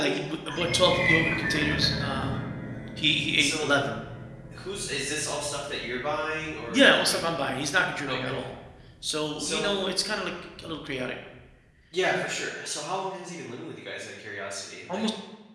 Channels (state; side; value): identical; both; correlation 1.00